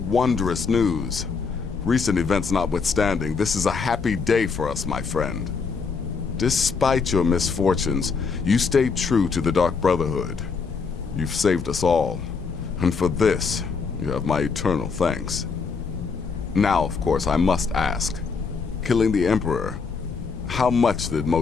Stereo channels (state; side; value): quieter; right; 5.1 dB